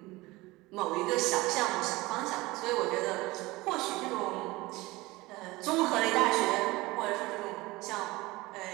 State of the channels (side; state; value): left; quieter; 20.8 dB